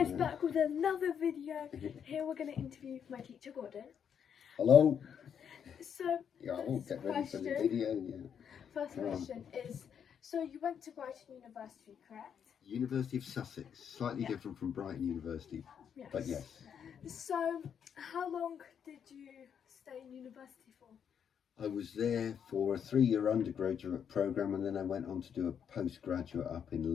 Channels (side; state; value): right; quieter; 7.9 dB